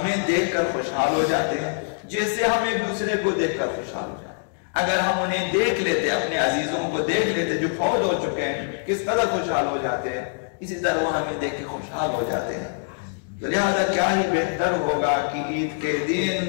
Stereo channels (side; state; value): right; silent; digital silence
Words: دیکھ کر خوشحال ہو جاتے ہیں جیسے ہم ایک دوسرے کو دیکھ کر خوشحال ہو جاتے ہیں۔ اگر ہم انہیں دیکھ لیتے، اپنے عزیزوں کو دیکھ لیتے جو فوت ہو چکے ہیں، کس قدر خوشحال ہو جاتے ہیں، اسی طرح وہ ہمیں دیکھ کے خوشحال ہو جاتے ہیں۔ تو لہذا کیا ہی بہتر ہوگا کہ عید کے